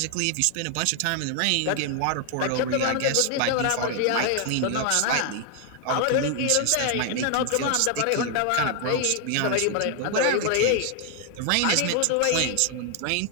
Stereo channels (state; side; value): different; both; correlation 0.00